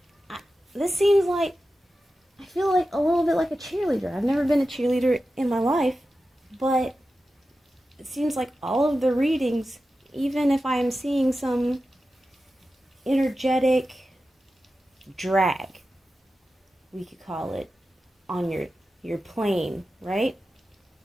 this seems like, I feel like a little bit like a cheerleader. I've never been a cheerleader in my life, but it seems like all of the readings, even if I'm seeing some energetic drag, we could call it, on your plane, right?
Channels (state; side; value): normal; both; correlation 0.93